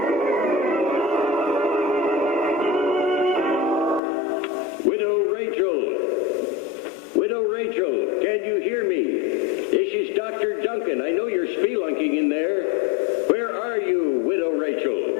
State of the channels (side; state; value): right; drops out; at 4.0 s